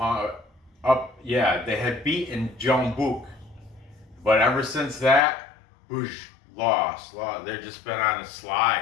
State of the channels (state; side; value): drops out; right; at 5.2 s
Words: They had beaten Jeonbuk. But ever since that, lost. They've just been on a